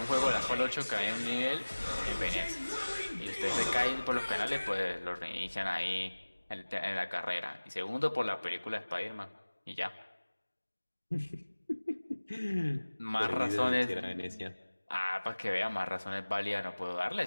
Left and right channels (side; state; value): both; inverted; correlation -1.00